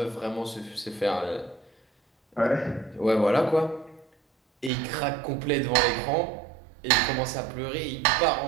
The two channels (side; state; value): left; drops out; at 4.7 s